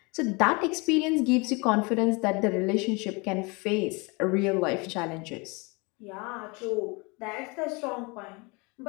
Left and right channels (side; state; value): right; quieter; 28.1 dB